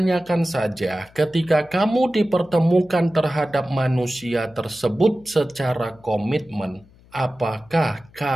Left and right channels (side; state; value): left; noise; hum, 27 dB below the sound